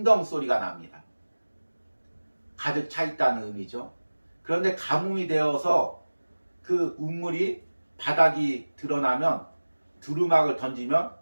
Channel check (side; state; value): both; inverted; correlation -1.00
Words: 소리가 납니다. 가득 차 있다는 의미죠. 그런데 가뭄이 되어서 그 우물이 바닥이 드러나면 두루마기를 던지면